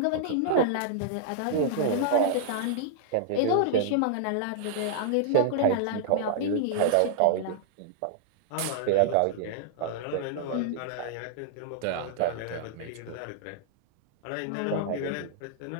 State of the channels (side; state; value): both; different; correlation -0.01